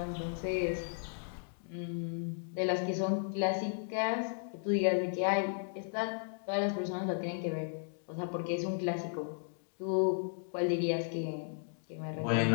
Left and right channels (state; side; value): silent; right; digital silence